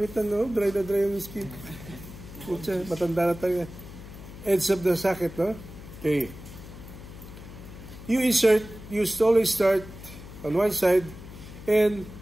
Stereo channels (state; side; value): noise; left; hum, 15 dB below the sound